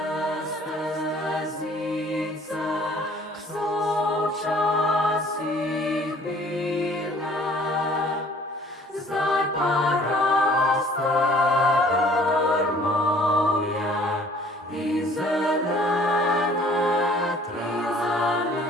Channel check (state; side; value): normal; both; correlation 0.54